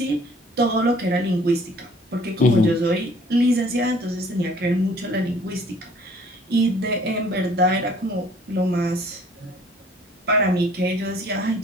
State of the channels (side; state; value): both; normal; correlation 0.56